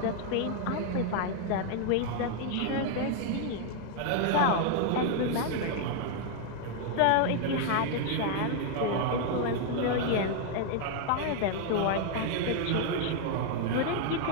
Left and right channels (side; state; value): both; different; correlation 0.00